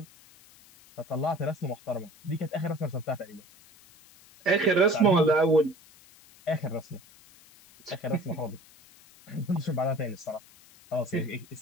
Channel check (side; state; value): left; noise; hiss, 25 dB below the sound